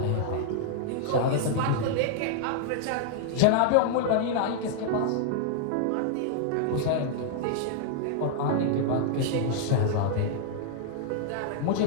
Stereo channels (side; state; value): both; different; correlation -0.01